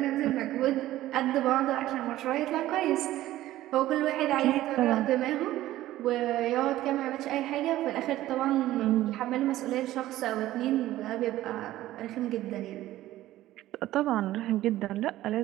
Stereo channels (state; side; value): quieter; left; 15.0 dB